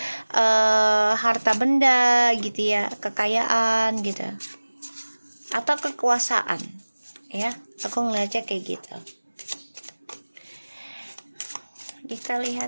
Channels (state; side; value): inverted; both; correlation -1.00